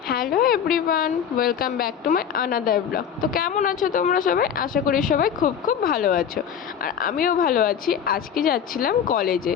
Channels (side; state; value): right; quieter; 8.2 dB